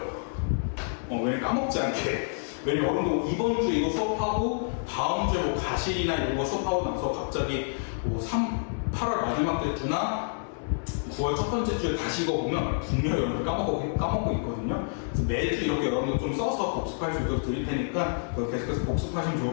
왜냐면 까먹지 않게. 왜냐면 여러분도 이번 주 이거 수업하고 다음 주에 가실이나 이런 거 수업하고 나서 갑자기 8월 마지막 주나 9월 첫 번째 주에 다시 이거 보면 분명히 여러분들 까먹고 있거든요. 그래서 매주 이렇게 여러분들 좀 써서 복습할 수 있도록 드릴 테니까 계속해서 복습하시면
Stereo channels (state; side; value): silent; right; 59 dB below the other